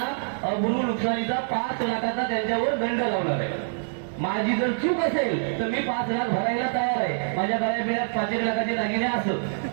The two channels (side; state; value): left; silent; digital silence